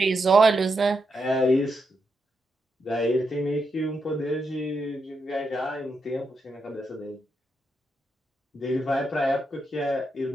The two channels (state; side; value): normal; both; correlation 0.83